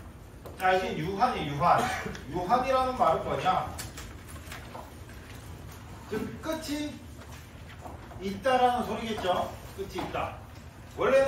자, 이제 유한이 유한. 유한이라는 말은 뭐냐? 즉 끝이 있다라는 소리겠죠. 끝이 있다.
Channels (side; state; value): both; identical; correlation 1.00